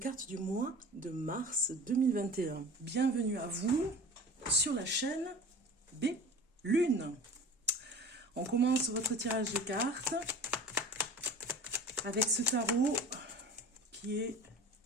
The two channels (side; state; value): both; normal; correlation 0.38